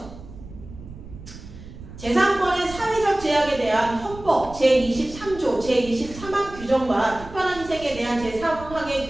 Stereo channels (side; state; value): right; noise; rumble, 15 dB below the sound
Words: 재산권의 사회적 제약에 대한 헌법 제23조 제23항 규정과 특별한 희생에 대한 제3항의